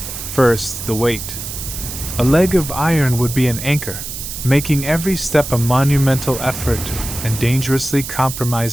First, the weight. A leg of iron would be an anchor, making every step a monumental effort and dangerously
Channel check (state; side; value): noise; right; hiss, 8 dB below the sound